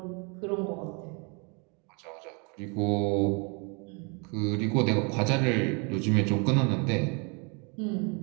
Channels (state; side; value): quieter; left; 33.5 dB